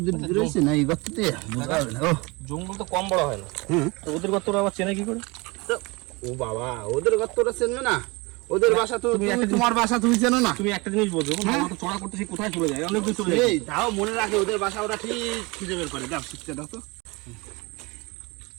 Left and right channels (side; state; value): left; quieter; 25.6 dB